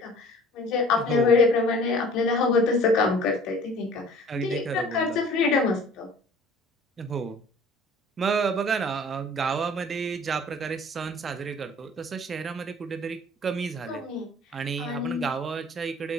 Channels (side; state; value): both; normal; correlation 0.48